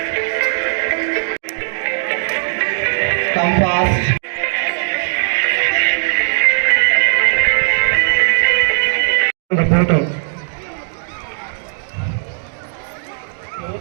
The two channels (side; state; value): left; silent; digital silence